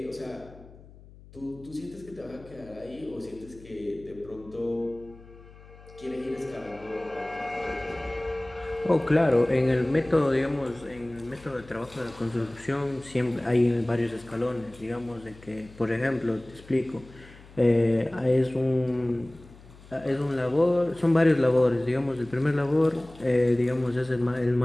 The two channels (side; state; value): left; noise; hum, 21 dB below the sound